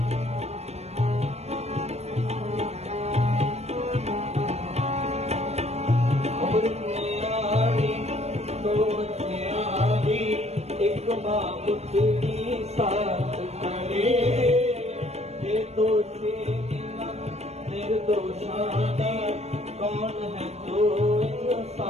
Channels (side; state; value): left; late; 0.31 ms